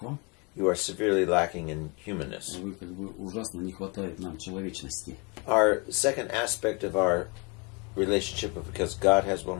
вам, you are severely lacking in humanness. вы как бы ужасно не хватает нам человечности. Our second aspect of our relationship, because God has one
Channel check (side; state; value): right; quieter; 31.4 dB